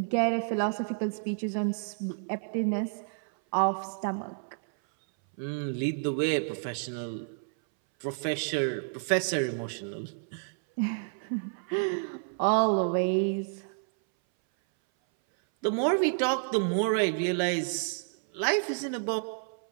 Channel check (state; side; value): silent; left; 58 dB below the other